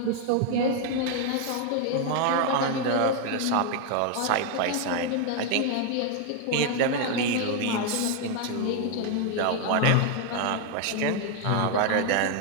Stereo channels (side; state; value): both; different; correlation 0.01